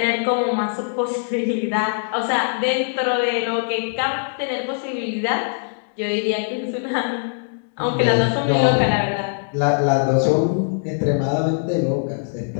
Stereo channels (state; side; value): silent; right; 65 dB below the other